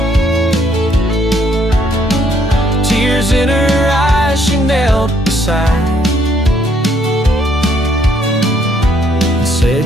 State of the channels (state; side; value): normal; both; correlation 0.68